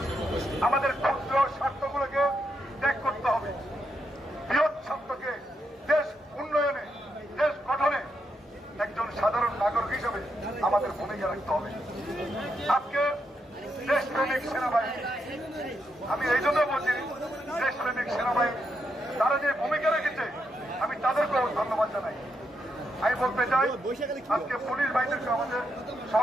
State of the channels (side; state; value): both; normal; correlation 0.81